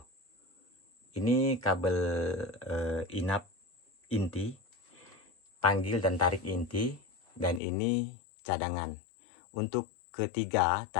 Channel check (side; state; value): right; drops out; at 7.6 s